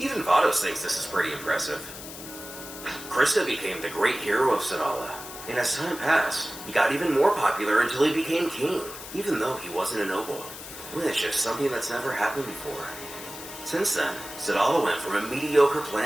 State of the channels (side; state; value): left; noise; hiss, 12 dB below the sound